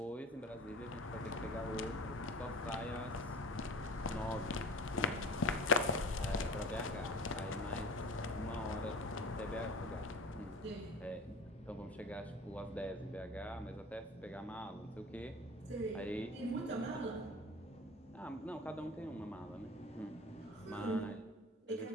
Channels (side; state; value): both; normal; correlation 0.38